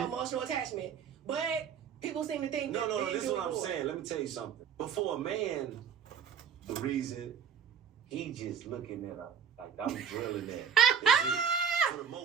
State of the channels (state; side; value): quieter; left; 7.5 dB